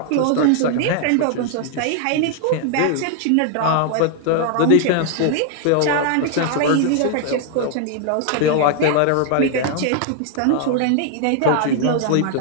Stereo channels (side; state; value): both; different; correlation 0.00